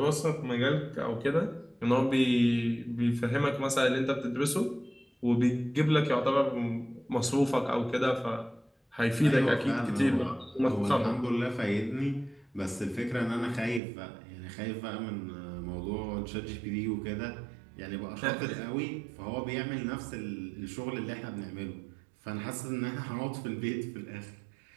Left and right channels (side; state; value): left; drops out; at 13.8 s